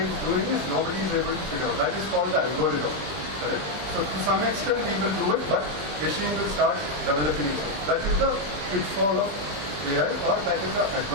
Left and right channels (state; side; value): late; left; 20 ms